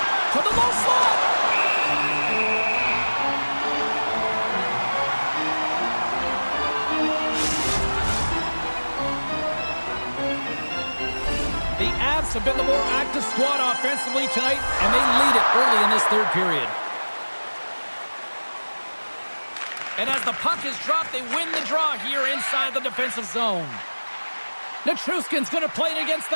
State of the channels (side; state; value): both; inverted; correlation -1.00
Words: To the low slot. The Avs have been the more active squad offensively tonight, and they lead it early in this third period. And as the puck is dropped, they win the draw here inside the defensive zone. Nichushkin's going to play it against the